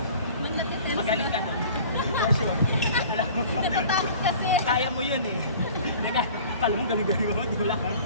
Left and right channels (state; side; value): inverted; both; correlation -0.45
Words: Magaling ka doon. For sure. Alam mo, Natatakot kasi. kaya mo yun eh. Kala mo galing-galing mo, di ko lang.